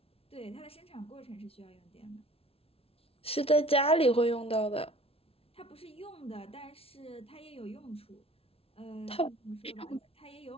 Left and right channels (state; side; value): late; right; 0.28 ms